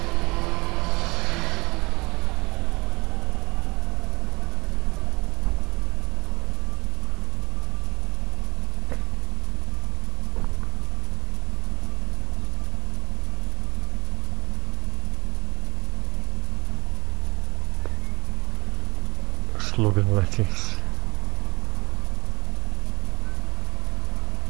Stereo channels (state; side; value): quieter; left; 24.1 dB